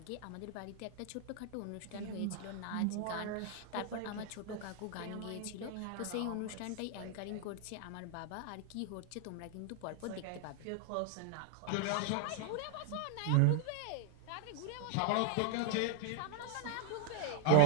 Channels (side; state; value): both; different; correlation 0.00